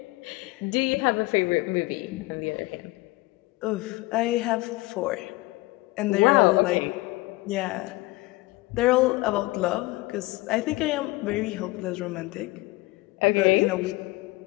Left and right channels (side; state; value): right; quieter; 21.1 dB